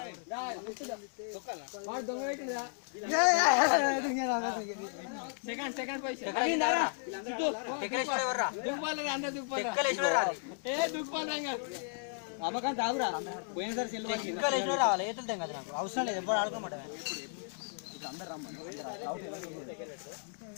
సెకండ్ అమ్మకాంత ఆగురా పోయినసారి సెల్లు రావాలి ఏతులుతాం కదా నాకు అవసరం లేదు ఎప్పుడు ఆడుకోమంటే అందరు రమ్మని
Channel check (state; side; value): silent; right; 55 dB below the other